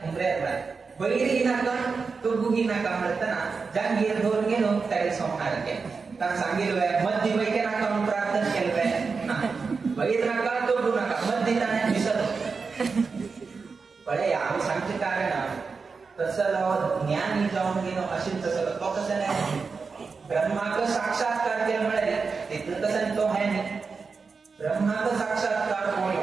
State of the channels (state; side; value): quieter; left; 4.8 dB